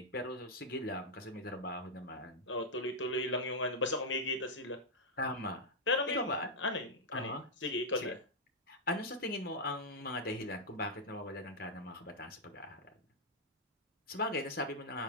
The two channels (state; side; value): normal; both; correlation -0.06